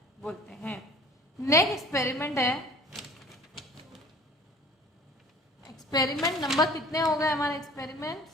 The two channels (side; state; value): both; normal; correlation 0.48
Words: बोलते हैं। Next experiment है, experiment number कितने हो गए हमारे, एक्सपेरिमेंट